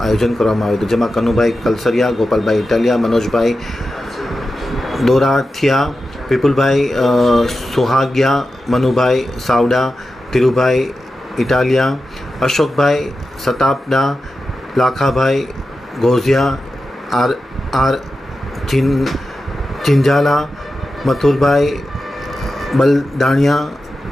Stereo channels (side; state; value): both; normal; correlation 0.92